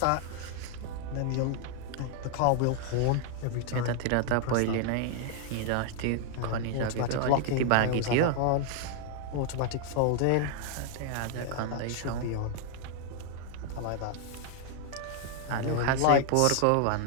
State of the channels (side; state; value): both; different; correlation 0.00